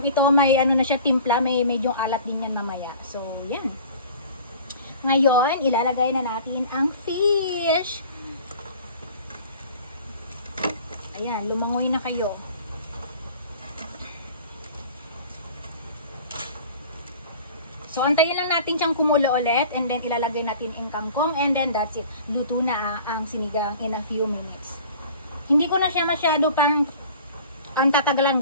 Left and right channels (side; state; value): both; inverted; correlation -0.44